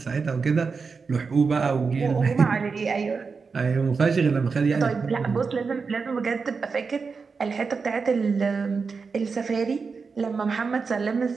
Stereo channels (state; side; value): quieter; left; 5.0 dB